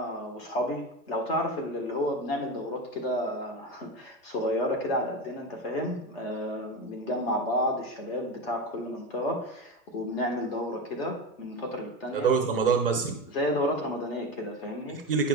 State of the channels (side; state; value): both; normal; correlation 0.21